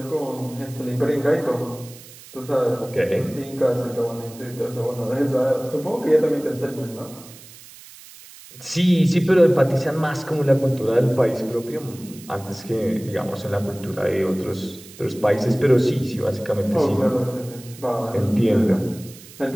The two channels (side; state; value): right; noise; hiss, 19 dB below the sound